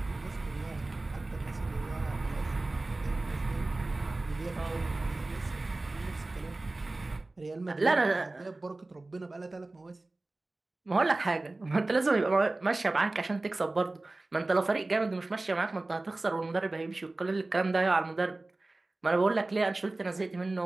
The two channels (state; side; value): quieter; left; 3.0 dB